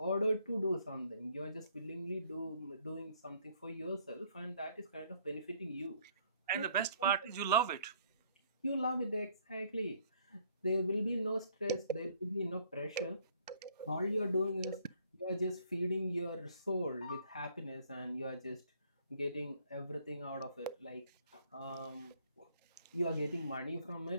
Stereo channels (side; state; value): both; inverted; correlation -0.63